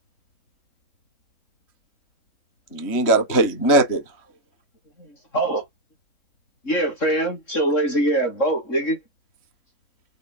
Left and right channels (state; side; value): late; right; 3.7 ms